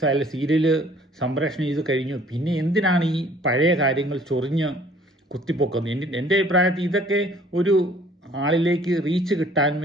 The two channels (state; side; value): normal; both; correlation 0.56